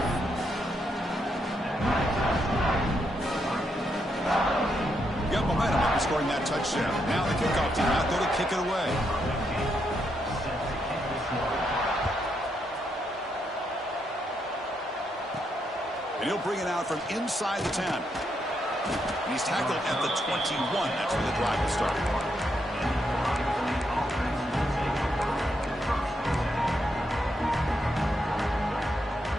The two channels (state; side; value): normal; both; correlation 0.80